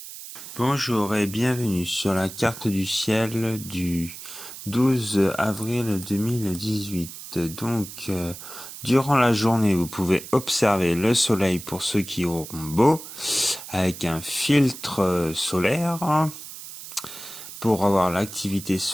Bonjour et bienvenue sur la carte du ciel du 12 avril 2018. Donc, durant la journée, vous pouvez observer le soleil pour ceux qui auront beau, avec un filtre solaire pour avoir l'activité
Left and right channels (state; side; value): noise; right; hiss, 13 dB below the sound